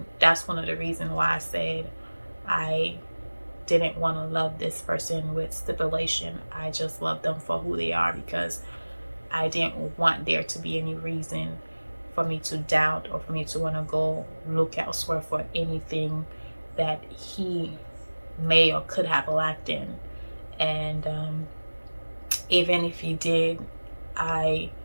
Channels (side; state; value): both; inverted; correlation -1.00